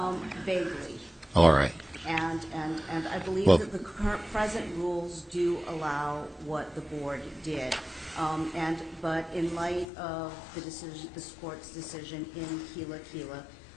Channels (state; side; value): drops out; right; at 9.9 s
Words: Vaguely. All right. And I believe Well, that the present rules do allow what the board did. But in light of the decision, this court's decision in Kila,